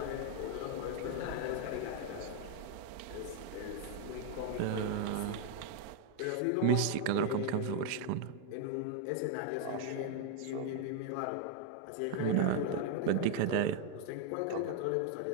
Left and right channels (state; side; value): different; both; correlation 0.01